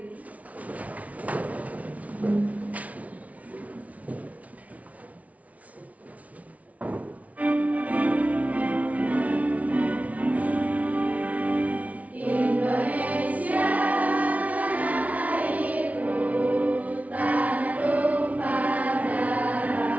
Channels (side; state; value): left; late; 0.069 ms